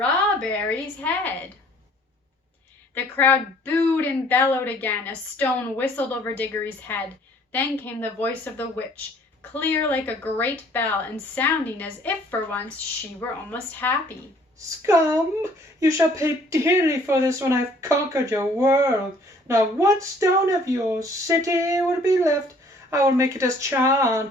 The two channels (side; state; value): both; normal; correlation 0.58